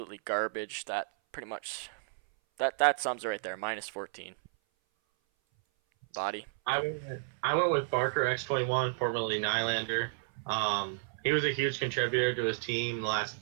garbage. That pretty much that sums it right there. -14. Body. I went with Barker X21, formerly Nylander. He was a huge contributor to his team the last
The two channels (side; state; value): left; silent; 56 dB below the other